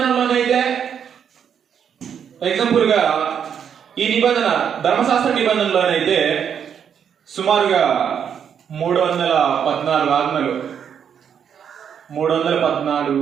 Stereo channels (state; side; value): quieter; left; 8.0 dB